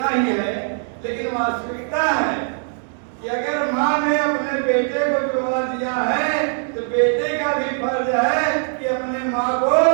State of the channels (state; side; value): silent; left; 55 dB below the other